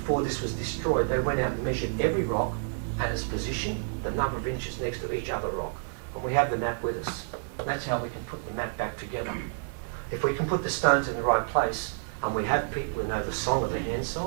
this was destroyed, they went out and measured every rock and its position, the number of inches next to each other rock. And we have the map with us. That's how we can put the map back together. If we can put the stones in the right place, and we have people who know the song of the hand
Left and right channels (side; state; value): left; silent; digital silence